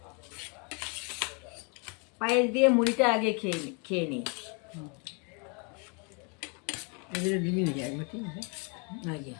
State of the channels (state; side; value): quieter; right; 35.1 dB